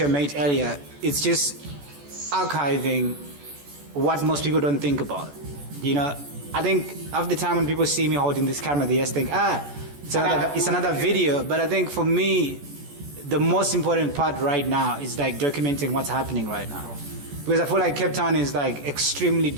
a mate earlier, it's just archiving what most people don't think about. You know, I think half the time when people see me holding this camera, they just think, it's another video. But I think for me, the most important part right now is like documenting what's happening right now. Because I feel like Capetown is like extremely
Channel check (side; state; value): left; late; 14 ms